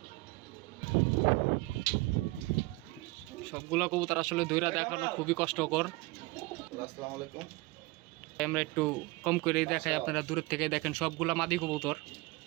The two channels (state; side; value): quieter; left; 23.0 dB